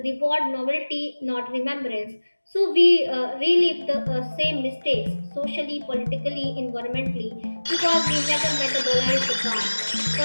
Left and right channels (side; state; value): both; inverted; correlation -1.00